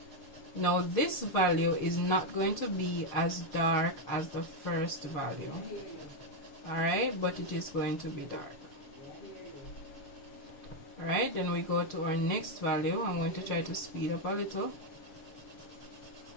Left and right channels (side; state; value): right; late; 6.8 ms